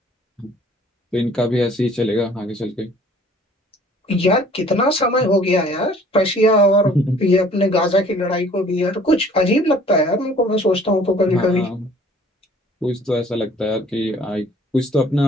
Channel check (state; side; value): normal; both; correlation 0.54